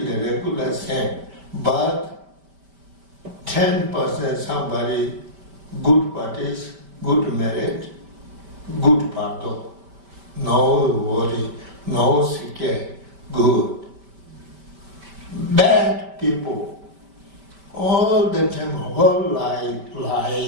regular same, but 10% somebody good parties, good marriage, good Bardo. No worry, no scare, good. Bad people, all the time, whole life,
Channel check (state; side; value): late; left; 5.1 ms